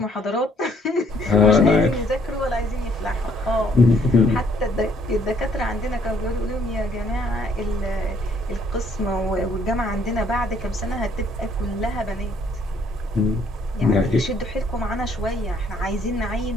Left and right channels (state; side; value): normal; both; correlation 0.65